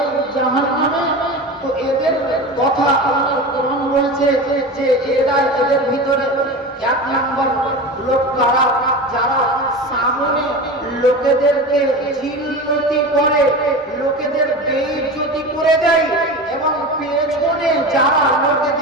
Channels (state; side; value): normal; both; correlation 0.28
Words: জাহান্নামে? তো এদের কথা আল্লাহর কোরআন বলছে যে এরা, এদের ভিতরে এক নম্বর লোক কারা, যারা সামনে লোকেদেরকে জিল্লতি করে, লোকেদের বেইজ্জতি করে দেয়, এবং পেছনে যারা